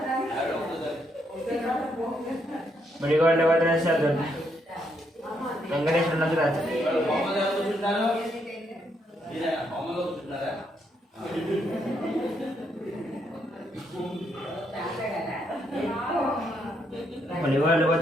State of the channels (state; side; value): normal; both; correlation 0.76